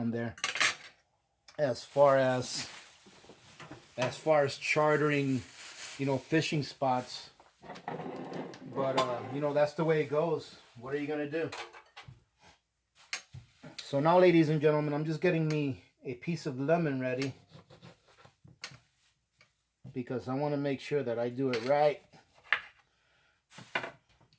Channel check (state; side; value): identical; both; correlation 1.00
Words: there, as far as chartering, fishing spots. But that's the way it goes. What are you going to do? So now, ladies and gentlemen, I'm just getting me a piece of lemon ready, because I want to make sure that I do it right.